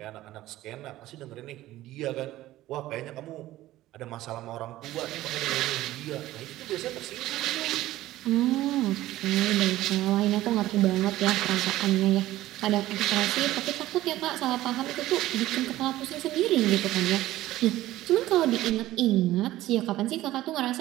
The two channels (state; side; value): quieter; left; 15.6 dB